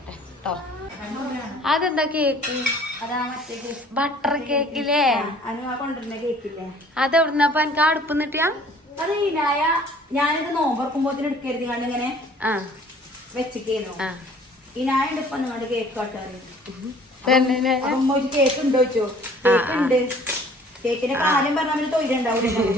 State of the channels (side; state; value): both; normal; correlation 0.53